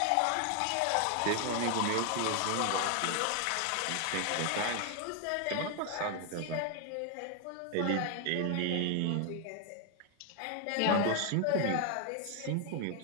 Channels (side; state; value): both; different; correlation 0.00